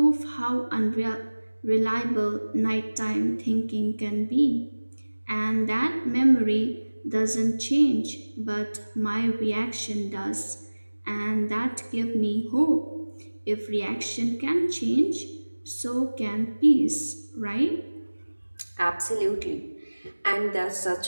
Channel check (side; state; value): both; inverted; correlation -1.00